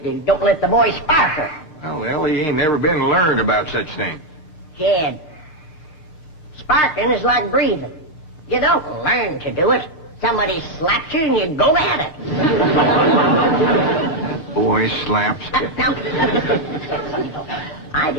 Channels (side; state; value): right; late; 6.4 ms